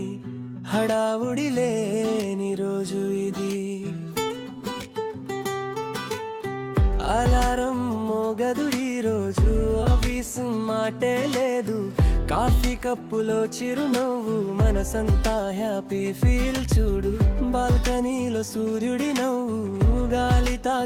హడావుడి లేని రోజు ఇది. అలారం మోగదు ఈ రోజు, ఆఫీసు మాటే లేదు. కాఫీ కప్పులో చిరునవ్వు, మనసంతా హ్యాపీ ఫీల్ చూడు. బాల్కనీలో సూర్యుడి నవ్వు, గాలి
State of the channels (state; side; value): identical; both; correlation 1.00